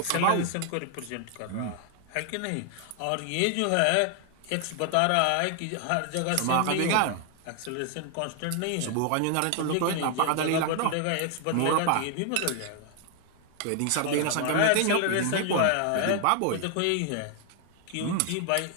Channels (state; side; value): different; both; correlation 0.00